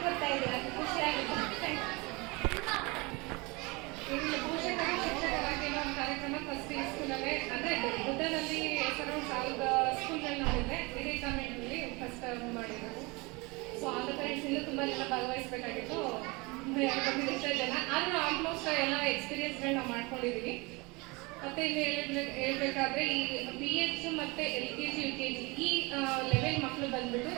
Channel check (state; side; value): quieter; left; 26.2 dB